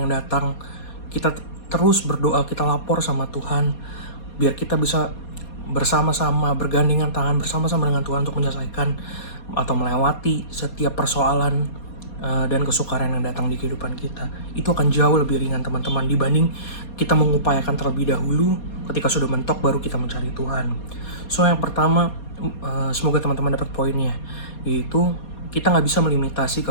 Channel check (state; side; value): late; right; 4.2 ms